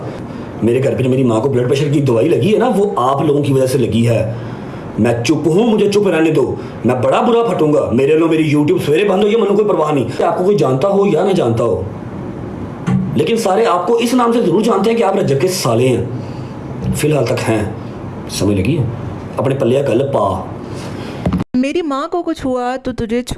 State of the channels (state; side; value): identical; both; correlation 1.00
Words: मेरे घर पे जो मेरी माँ को ब्लड प्रेशर की दवाई लगी है ना, वो आप लोगों की वजह से लगी है। मैं चुप हूँ, मुझे चुप रहने दो, मैं बड़ा बुरा फटूंगा। मेरे लो मेरी यूट्यूब सवेरे बंद हो, ये मैंने कोई परवाह नहीं। आपको कोई जानता हो या ना जानता हो, लेकिन सारे आपको इस नाम से जरूर जानते हैं कि आप रजब के साले हैं, फिलहाल तक हैं। समझ लगी है? अपने पल्ले गल पा। मेरी माँ को कुछ हुआ तो तुझे